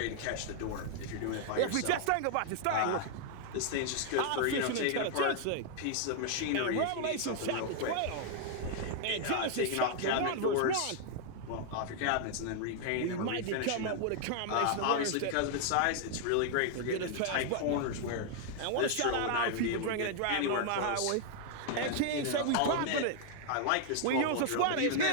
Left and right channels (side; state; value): both; different; correlation 0.00